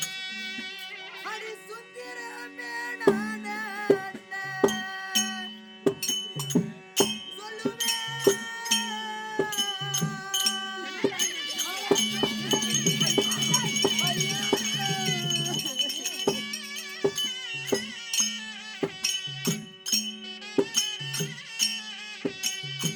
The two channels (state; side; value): identical; both; correlation 1.00